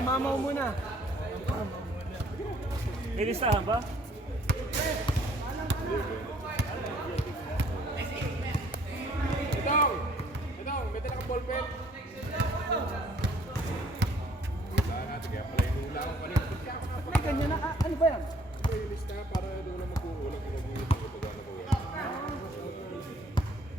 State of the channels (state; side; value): normal; both; correlation 0.60